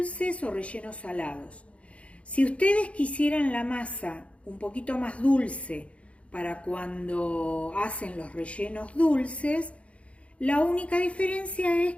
o rellenos salados. Si ustedes quisieran la masa un poquito más dulce para cuando hacen los rellenos dulces, la única diferencia es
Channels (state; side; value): late; right; 0.062 ms